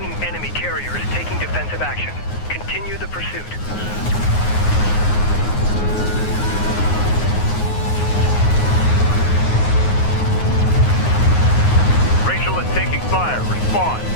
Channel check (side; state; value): right; late; 9.6 ms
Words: enemy carrier is taking defensive action. Continue the pursuit. Rachel is taking fire. Respond.